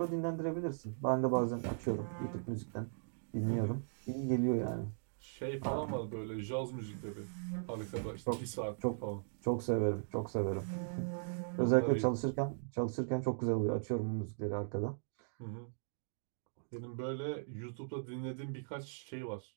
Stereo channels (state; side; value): silent; left; digital silence